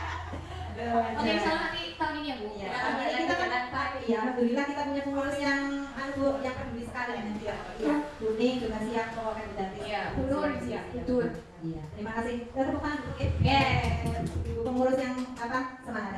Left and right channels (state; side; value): identical; both; correlation 1.00